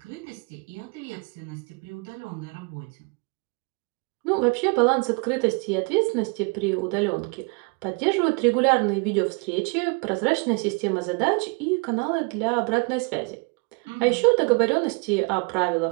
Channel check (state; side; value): quieter; left; 32.1 dB